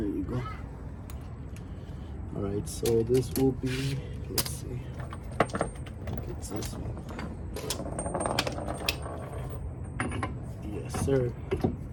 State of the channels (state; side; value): identical; both; correlation 1.00